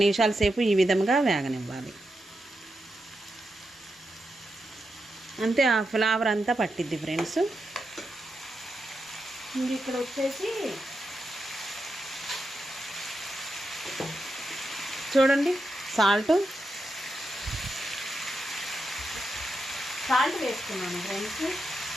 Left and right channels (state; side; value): normal; both; correlation 0.87